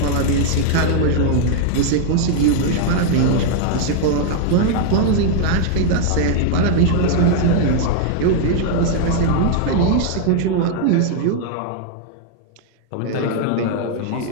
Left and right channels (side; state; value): both; different; correlation 0.00